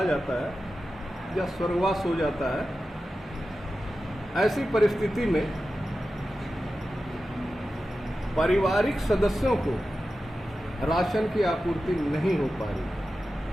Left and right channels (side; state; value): both; normal; correlation 0.93